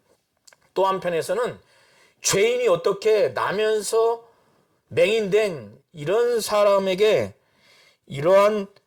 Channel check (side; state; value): both; identical; correlation 1.00